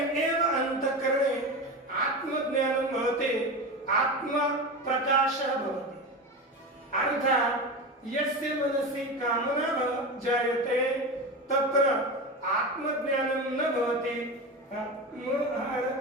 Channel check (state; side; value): normal; both; correlation 0.23